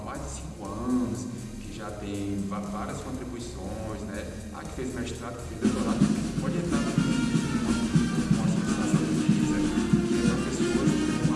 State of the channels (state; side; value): identical; both; correlation 1.00